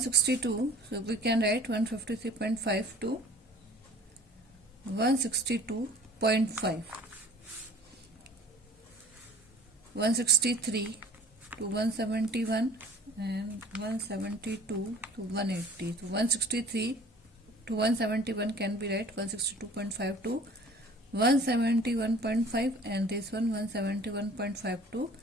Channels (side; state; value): both; normal; correlation 0.47